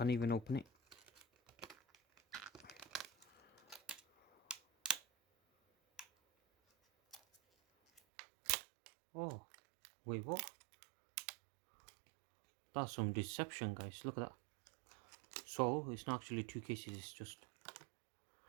even open it. Oh, wait, what? That's some deception, guys. Look at that. So it's not actually two cases, it's just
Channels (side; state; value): left; drops out; at 8.0 s